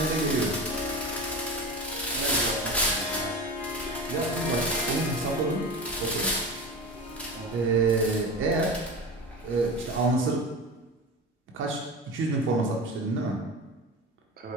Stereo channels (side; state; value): both; normal; correlation 0.28